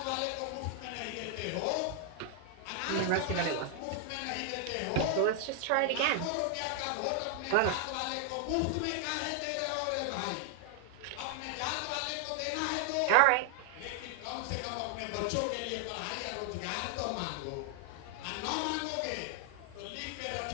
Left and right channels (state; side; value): different; both; correlation 0.00